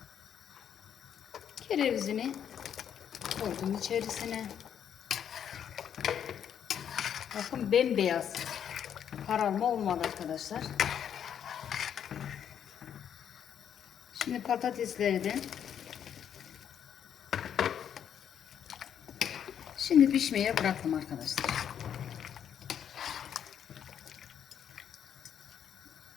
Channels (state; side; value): quieter; right; 8.9 dB